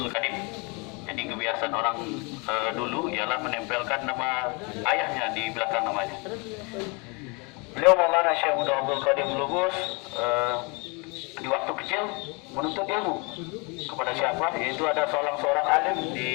Qadim. Jadi kebiasaan orang dulu ialah menempelkan nama ayahnya di belakang namanya. Beliau Maulana Syekh Muda Abdul Qadir Blobos di waktu kecil menuntut ilmu kepada siapa? Yaitu ada seorang alim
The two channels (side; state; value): right; quieter; 30.6 dB